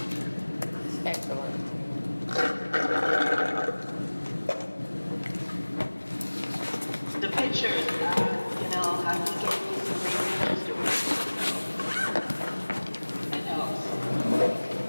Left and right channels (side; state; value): both; inverted; correlation -1.00